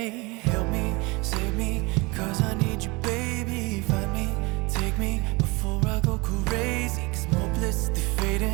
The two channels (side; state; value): left; quieter; 25.5 dB